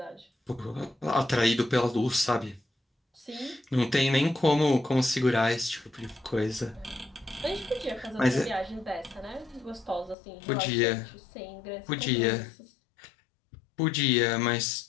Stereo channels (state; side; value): drops out; right; at 10.2 s